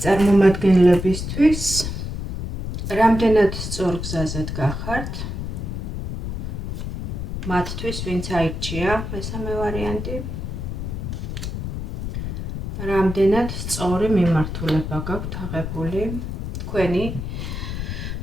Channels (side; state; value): left; noise; rumble, 5 dB below the sound